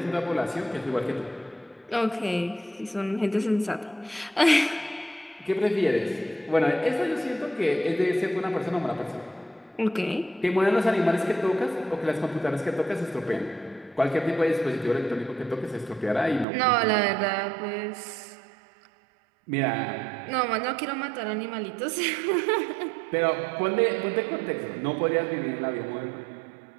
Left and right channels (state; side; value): drops out; left; at 16.4 s